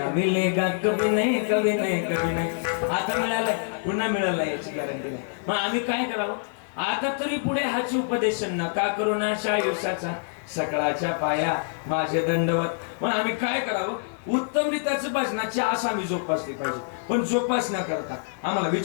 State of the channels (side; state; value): right; silent; digital silence